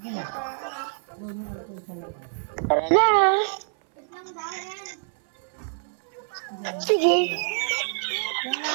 na. Doon yung alcohol sa labas. Tara na. Sige. Yan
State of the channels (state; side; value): silent; left; 60 dB below the other